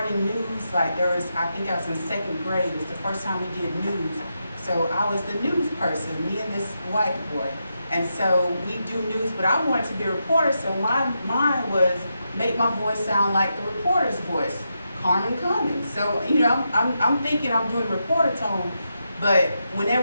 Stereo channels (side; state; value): both; inverted; correlation -0.85